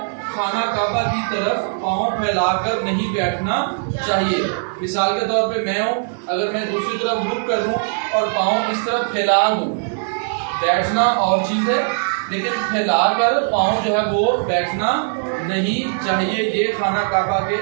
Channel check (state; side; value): silent; left; 65 dB below the other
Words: خانہ کعبہ کی طرف پاؤں پھیلا کر نہیں بیٹھنا چاہیے۔ مثال کے طور پہ میں ہوں، اگر میں دوسری طرف رک کر دوں اور پاؤں اس طرف پھیلا دوں، بیٹھنا اور چیز ہے، لیکن پھیلا کر پاؤں جو ہے وہ بیٹھنا نہیں چاہیے۔ یہ خانہ کعبہ کے